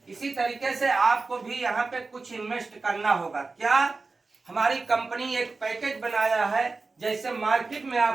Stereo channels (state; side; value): quieter; left; 3.8 dB